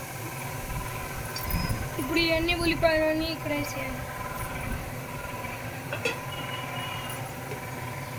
ఇప్పుడు ఇవన్నీ ఉల్లిపాయలని ఇక్కడ వేసేయాలి.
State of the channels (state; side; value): identical; both; correlation 1.00